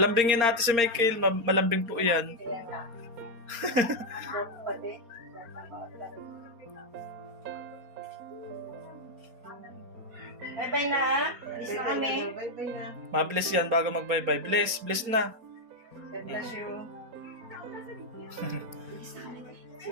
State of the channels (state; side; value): late; left; 4.3 ms